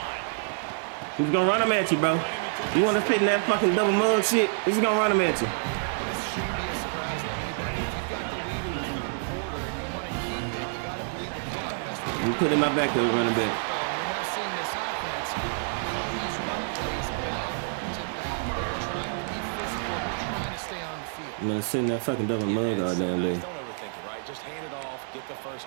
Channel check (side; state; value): left; silent; digital silence